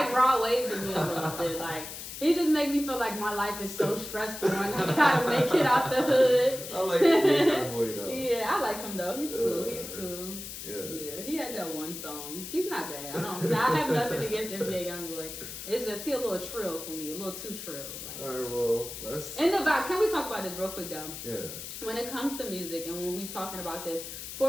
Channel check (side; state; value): left; noise; hiss, 9 dB below the sound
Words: raw waving me a little bit. Like he just make me feel like my life is so stressful and I gotta make it out the hood. I like NBA Youngboy though. Yeah, I like him though. He's cool. Yeah, he had that one song. He's not bad. I have nothing against NBA Youngboy. It's just he a little trill for me, a little too trill. Like. All right, well, let's. And the vibe. Can we talk about this real quick though? Yeah. When it comes to music and when we talking about this,